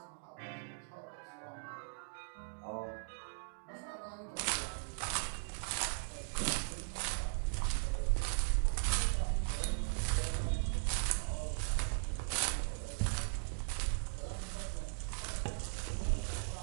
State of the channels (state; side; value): silent; left; digital silence